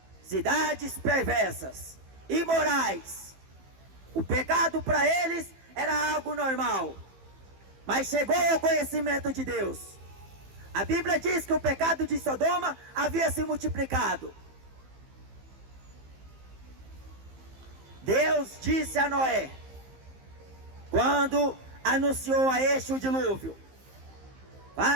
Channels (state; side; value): late; left; 15 ms